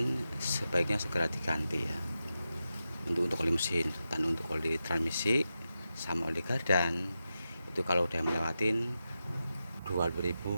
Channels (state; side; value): inverted; both; correlation -0.90